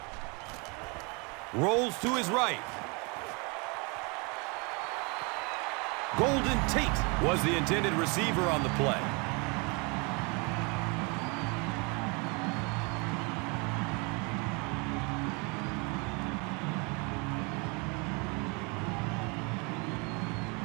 Rolls to his right. Golden Tate was the intended receiver on the play.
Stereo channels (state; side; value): quieter; left; 30.7 dB